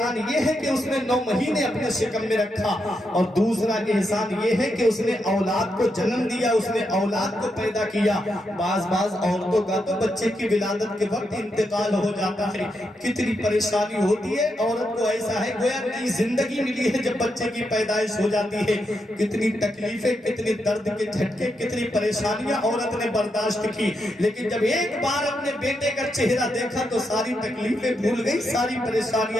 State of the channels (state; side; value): normal; both; correlation 0.83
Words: یہ ہے کہ اس نے 9 مہینے اپنے شکم میں رکھا, اور دوسرا احسان یہ ہے کہ اس نے اولاد کو جنم دیا, اس نے اولاد کو پیدا کیا. بعض عورتوں کا تو بچے کی ولادت کے وقت انتقال ہو جاتا ہے, کتنی پریشانی ہوتی ہے عورت کو. ایسا ہے گویا نئی زندگی ملی ہے جب بچے کی پیدائش ہو جاتی ہے. کتنی تکلیفیں, کتنی درد کے جھٹکے, کتنی پریشانیاں عورت نے برداشت کی, لیکن جب ایک بار اپنے بیٹے کا چہرہ دیکھا تو ساری تکلیفیں بھول گئی, ساری